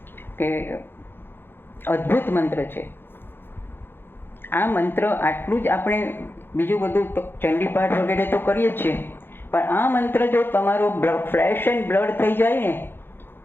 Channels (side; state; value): right; late; 0.10 ms